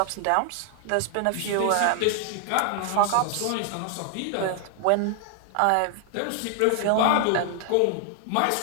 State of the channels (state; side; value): different; both; correlation 0.00